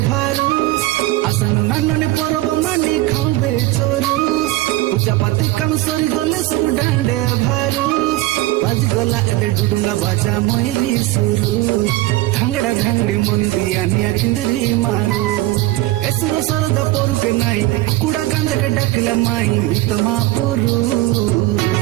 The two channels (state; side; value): quieter; left; 17.8 dB